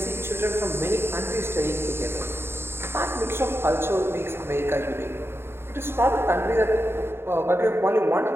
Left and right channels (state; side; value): late; left; 0.11 ms